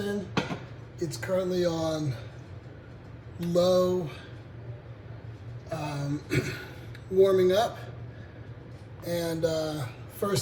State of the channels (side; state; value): both; identical; correlation 1.00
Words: It's currently on low, warming up. And